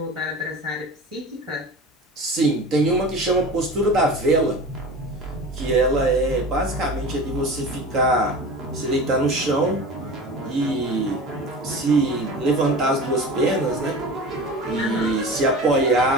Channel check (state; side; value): normal; both; correlation 0.34